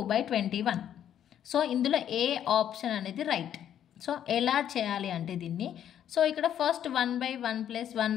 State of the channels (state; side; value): quieter; right; 10.1 dB